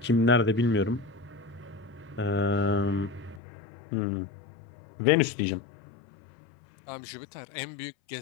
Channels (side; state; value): right; drops out; at 3.4 s